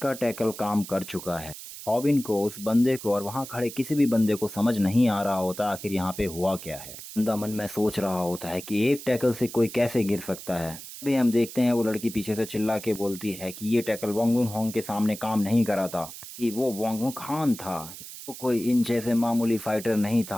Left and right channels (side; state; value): right; noise; hiss, 13 dB below the sound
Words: टैकल काम कर चुका है। हॉबिन को, उस बंदे को और वहाँ खड़े किसी भी बंदे को समझ नहीं आ रहा होता आखिर यहाँ पे हुआ क्या है। बंदा मन में सोच रहा होता है कि एक टैकल से कोई कैसे गिर सकता है। अभी हम देखते हैं वो लड़की पीछे से चिल्ला के बोलती है कि ये टैकल वांगुन होंग के सामने काम नहीं करा था, कि वो वांगुन खान था, वो कोई इन जैसे मामूली फाइटर नहीं